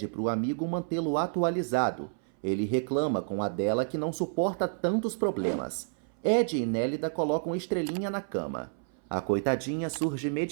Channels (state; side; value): silent; left; 58 dB below the other